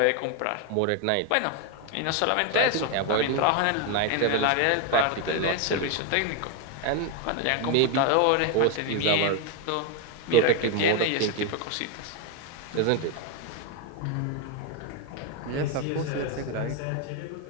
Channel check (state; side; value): different; both; correlation 0.01